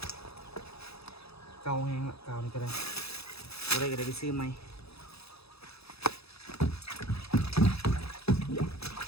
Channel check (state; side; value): late; right; 0.78 ms